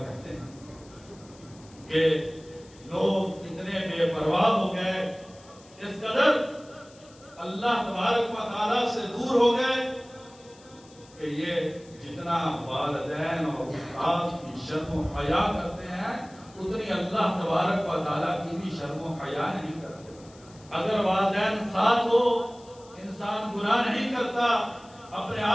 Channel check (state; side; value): noise; left; hiss, 25 dB below the sound